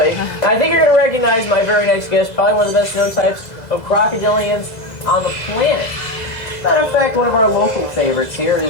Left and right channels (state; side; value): late; right; 2.0 ms